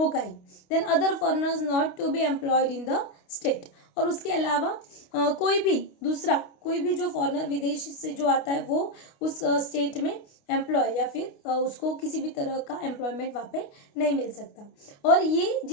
ही। Then other foreigners not to be employed in the state. और उसके अलावा कोई भी जो फॉरेनर विदेश से जो आता है वो उस स्टेट में एम्प्लॉय या फिर उसको किसी भी तरह का एम्प्लॉयमेंट वहाँ पे नहीं मिल सकता। और ये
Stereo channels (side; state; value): right; late; 29 ms